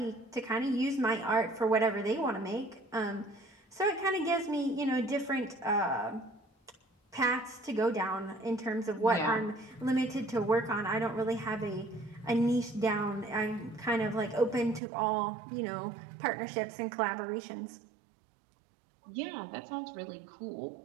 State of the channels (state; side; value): drops out; left; at 14.8 s